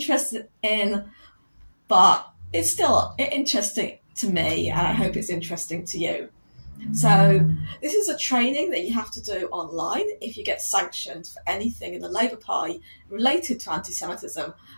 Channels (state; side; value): inverted; both; correlation -1.00